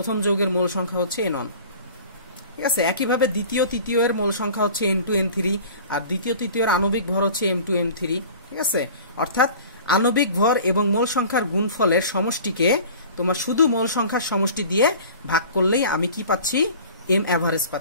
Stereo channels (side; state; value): both; inverted; correlation -0.43